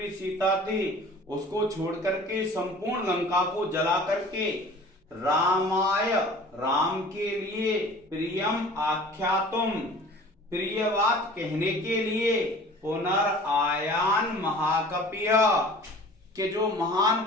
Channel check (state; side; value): normal; both; correlation 0.45